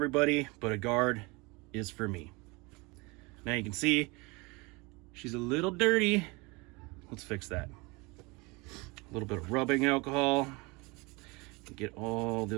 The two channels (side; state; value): left; quieter; 26.0 dB